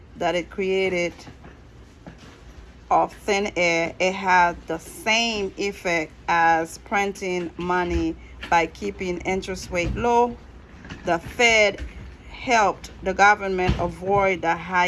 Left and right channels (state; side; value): identical; both; correlation 1.00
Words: that it created of thin air. It had the same effect as printing money by keeping interest rate low. The Fed helped the government avoid the